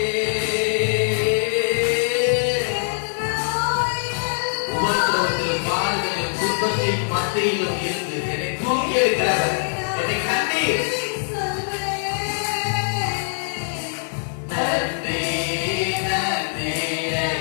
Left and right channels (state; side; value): silent; right; 57 dB below the other